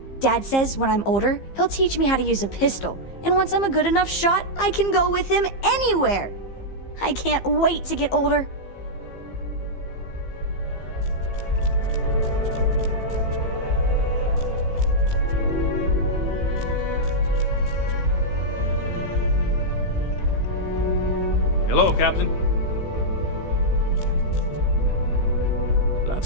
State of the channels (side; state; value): right; late; 15 ms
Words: Dad says when I'm older, he'll teach me how to use a pistol, and once I'm a good enough shot, I can go with him anywhere. I can't wait to get older. Hello, Captain. Glad